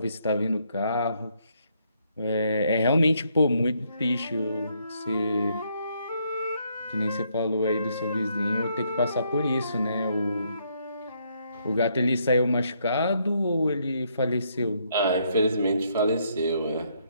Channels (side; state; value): both; inverted; correlation -0.73